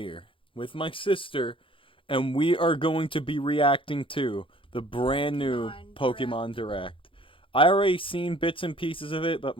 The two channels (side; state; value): right; late; 0.25 ms